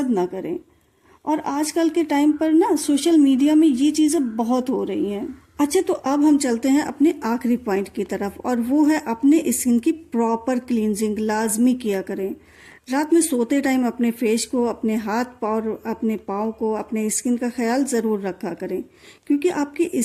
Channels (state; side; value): identical; both; correlation 1.00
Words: ना करें। और आजकल के टाइम पर ना सोशल मीडिया में ये चीज़ें बहुत हो रही हैं। अच्छा, तो अब हम चलते हैं अपने आखिरी पॉइंट की तरफ, और वो है अपने स्किन की प्रॉपर क्लींजिंग लाजमी किया करें। रात में सोते टाइम अपने फेस को, अपने हाथ और अपने पाँव को, अपने स्किन का ख्याल ज़रूर रखा करें, क्योंकि आपकी